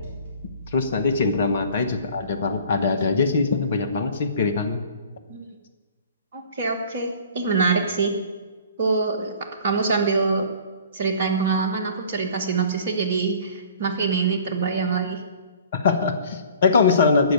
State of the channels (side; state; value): both; inverted; correlation -0.48